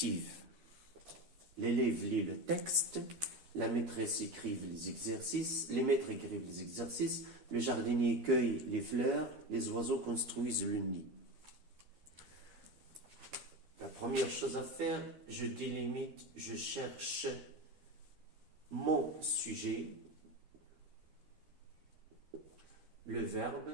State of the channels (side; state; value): left; late; 12 ms